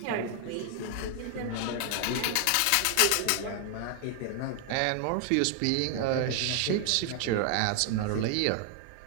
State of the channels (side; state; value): both; different; correlation 0.00